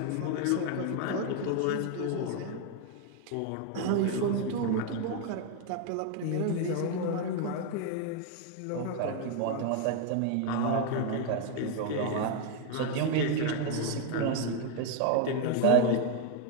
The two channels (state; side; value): different; both; correlation 0.01